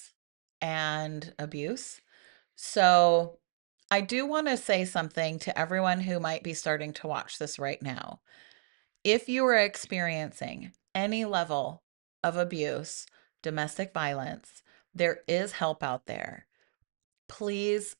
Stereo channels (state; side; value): silent; left; digital silence